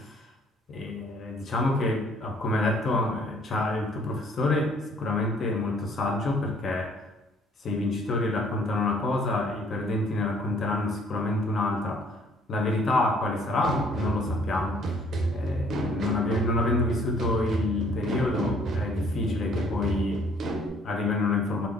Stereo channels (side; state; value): both; normal; correlation 0.60